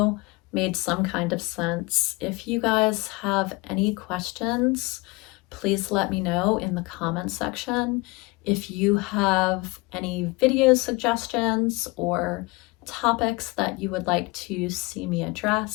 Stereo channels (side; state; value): right; quieter; 24.3 dB